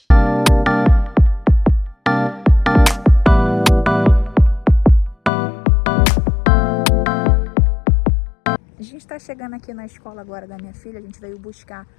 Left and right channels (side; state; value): right; drops out; at 5.3 s